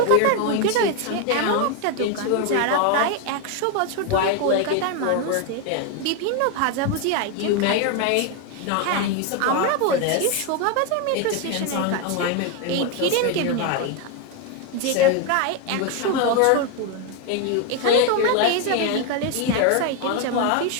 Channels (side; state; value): both; different; correlation 0.01